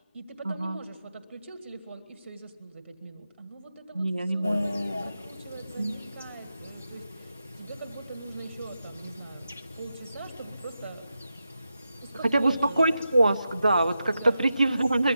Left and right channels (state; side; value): inverted; both; correlation -0.89